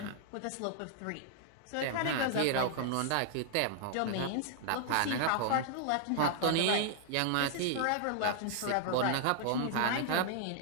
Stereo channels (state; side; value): different; both; correlation -0.01